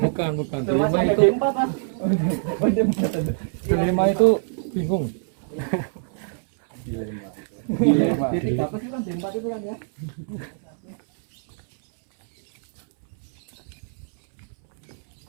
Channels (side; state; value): left; silent; 63 dB below the other